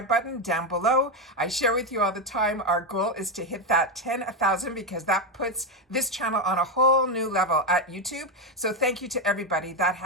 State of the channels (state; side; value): normal; both; correlation 0.08